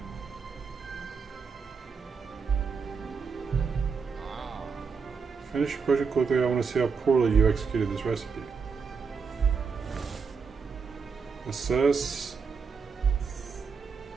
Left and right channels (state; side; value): quieter; left; 5.5 dB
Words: Finish your project quickly. I want to see how poorly you executed this recipe. Assess.